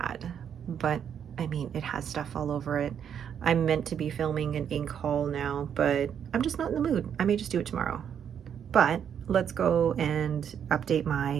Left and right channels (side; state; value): left; quieter; 8.4 dB